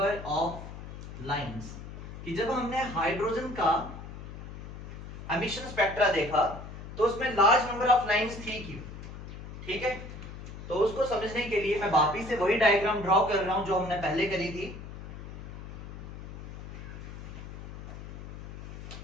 of lines, कि जब हमने हाइड्रोजन का एमिशन स्पेक्ट्रा देखा तो उसमें लार्ज नंबर ऑफ लाइंस थी क्यों? ठीक है, तो उसको समझने के लिए मैं वापिस से वही डायग्राम ड्रॉ कर रहा हूं जो हमने पहले करी थी।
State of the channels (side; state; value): left; noise; hum, 11 dB below the sound